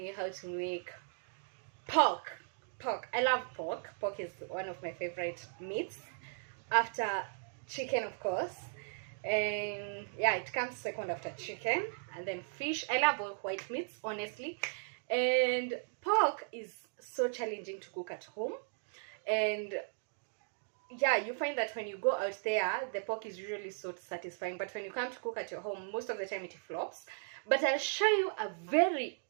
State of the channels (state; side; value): silent; left; digital silence